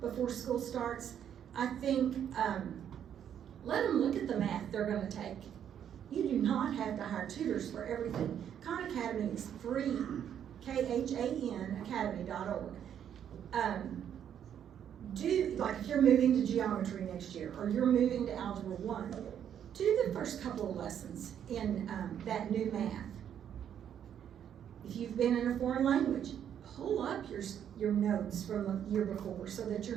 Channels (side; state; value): left; quieter; 9.3 dB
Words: before school starts. I think let them look at the math they're going to take. You do not have to hire tutors for everything. Khan Academy is free, KHAN academy.org. Like if you're moving to geometry next year or you're moving to Algebra 1, do the first couple of lessons in that new math. If you've been in a foreign language, pull up your notes from the year before so that